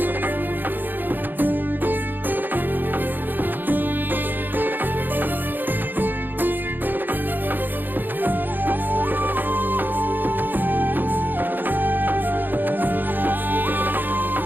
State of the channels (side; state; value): left; late; 0.090 ms